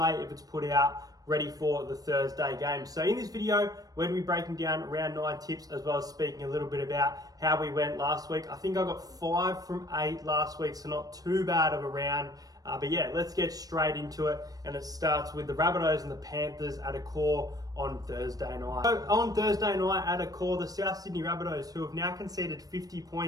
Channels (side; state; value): left; late; 0.18 ms